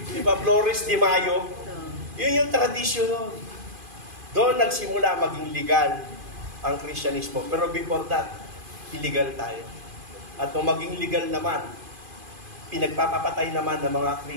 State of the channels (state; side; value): late; left; 2.5 ms